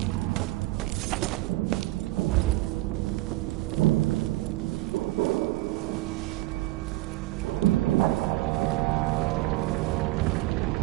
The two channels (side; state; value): left; quieter; 19.0 dB